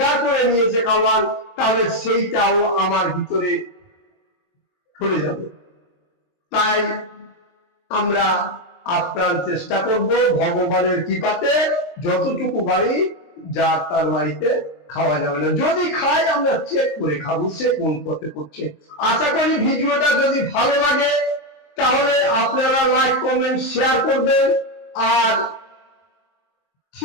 করে নিয়েছে খাওয়ান, তাহলে সেইটাও আমার ভিতরে চলে যাবে। তাই আমরা আপ্রাণ চেষ্টা করব ভগবানের কৃপাতে যতটুকু বাড়ি, যার তার বাড়িতে খাওয়া যাবে না। যদি খাই, আমরা চেক করে খাবো সে কোন পথে করছে। আশা করি ভিডিওটা যদি ভালো লাগে তাহলে আপনারা লাইক, কমেন্ট, শেয়ার করবেন, আর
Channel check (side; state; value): right; late; 23 ms